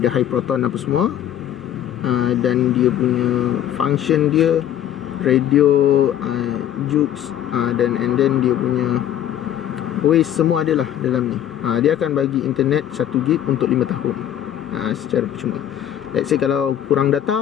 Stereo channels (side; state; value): right; quieter; 11.0 dB